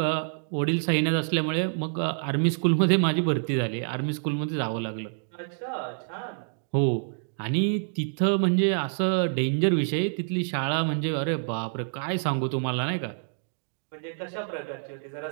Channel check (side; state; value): left; silent; digital silence